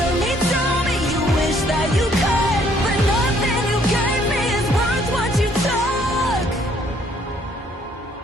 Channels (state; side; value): normal; both; correlation 0.64